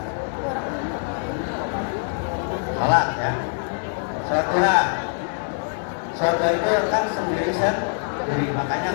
salat ya, sholat duha. Sholat itu kan sendiri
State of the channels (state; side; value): silent; right; digital silence